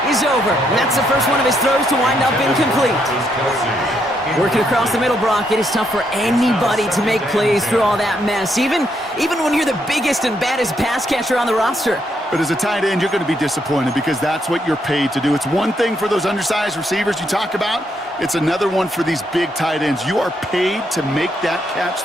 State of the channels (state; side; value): normal; both; correlation 0.76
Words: is over. And that's the first one of his throws to wind up incomplete. Working across the middle, Brock, it is tough for anybody to make plays through all that mess, even when you're the biggest and baddest pass catcher on the roster. But as a tight end, you're going to be disappointed because that's what you're paid to do. It's one thing for those undersized receivers you talk about. It's another one for these big tight ends. You are paid to make that catch